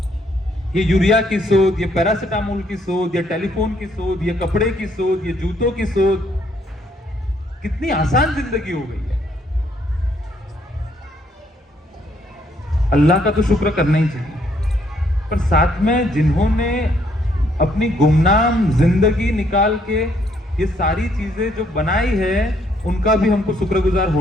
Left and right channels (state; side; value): normal; both; correlation 0.69